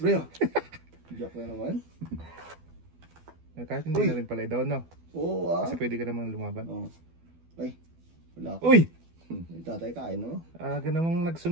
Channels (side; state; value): left; late; 12 ms